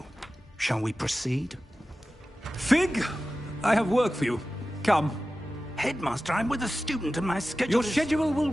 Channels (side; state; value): both; normal; correlation 0.94